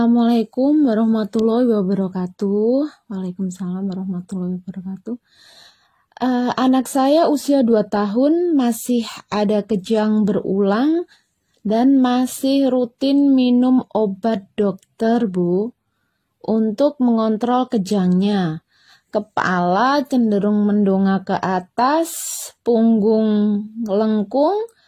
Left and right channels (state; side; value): identical; both; correlation 1.00